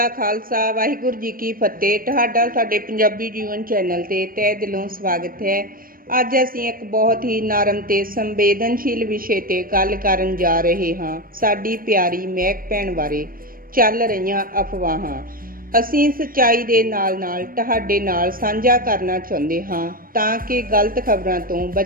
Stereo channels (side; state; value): left; late; 0.41 ms